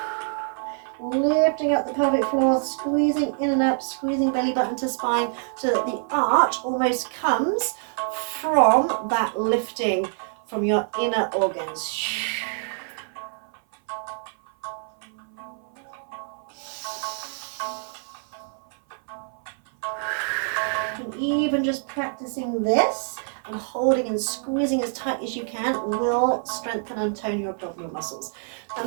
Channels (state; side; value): silent; left; 57 dB below the other